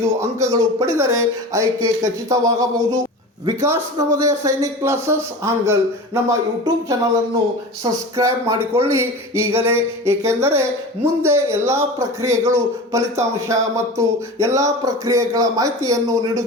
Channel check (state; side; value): normal; both; correlation 0.32